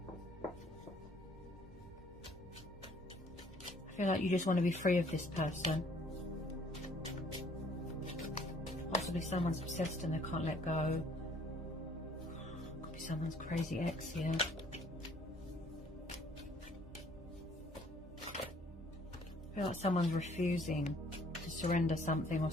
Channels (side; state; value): both; normal; correlation 0.60